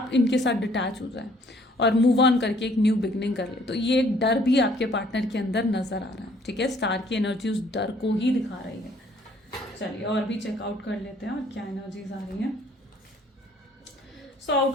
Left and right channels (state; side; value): normal; both; correlation 0.60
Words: इनके साथ डिटैच हो जाएं और मूव ऑन करके एक न्यू बिगनिंग कर ले। तो ये एक डर भी आपके पार्टनर के अंदर नजर आ रहा है। ठीक है, स्टार की एनर्जी उस डर को ही दिखा रही है। चलिए और भी चेकआउट कर लेते हैं और क्या एनर्जीज आ रही हैं। सो